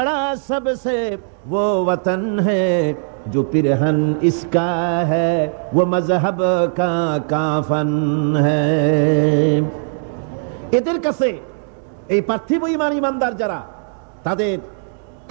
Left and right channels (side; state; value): left; silent; digital silence